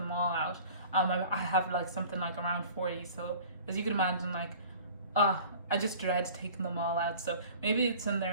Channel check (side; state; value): both; inverted; correlation -0.45